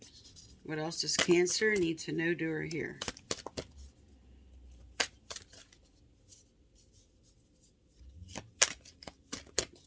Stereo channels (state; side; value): identical; both; correlation 1.00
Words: What else does Cancer need to know, do, or hear?